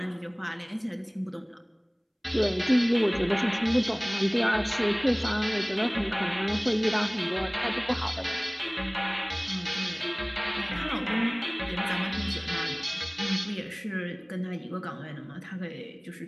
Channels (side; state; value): both; identical; correlation 1.00